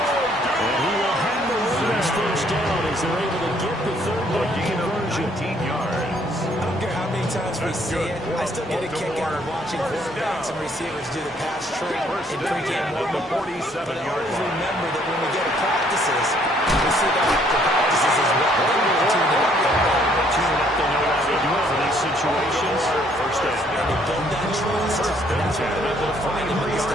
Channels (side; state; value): both; normal; correlation 0.65